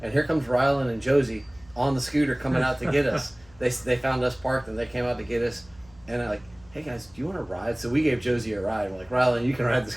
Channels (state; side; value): noise; left; hum, 27 dB below the sound